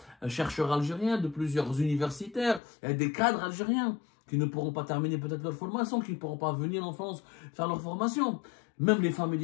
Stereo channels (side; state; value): right; drops out; at 2.6 s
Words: chercheurs algériens, de plusieurs universitaires et des cadres algériens qui ne pourront pas terminer peut-être leur formation, qui ne pourront pas venir en France faire leur formation. Même les familles